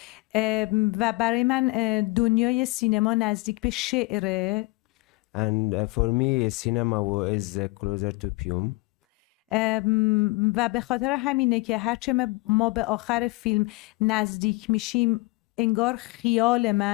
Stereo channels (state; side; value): quieter; right; 23.6 dB